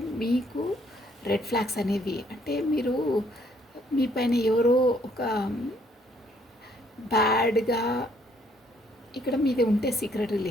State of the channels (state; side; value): normal; both; correlation 0.66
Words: మీకు రెడ్ ఫ్లాగ్స్ అనేవి అంటే మీ పైన ఎవరో ఒక బ్యాడ్గా ఇక్కడ మీది ఉంటే సీక్రెట్